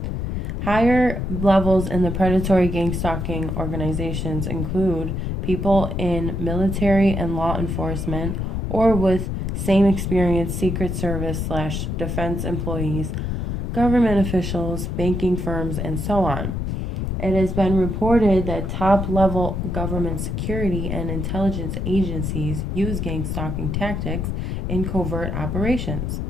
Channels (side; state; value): left; noise; rumble, 2 dB below the sound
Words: Higher levels in the predatory gang stalking organizations include people in military and law enforcement or with same experience Secret Service/defense employees, government officials, banking firms, and so on. It has been reported that top-level government security and intelligence agencies use gang stalking tactics in covert operations.